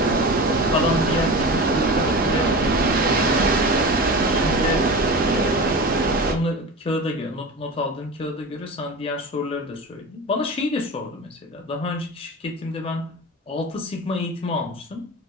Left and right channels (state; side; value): normal; both; correlation 0.30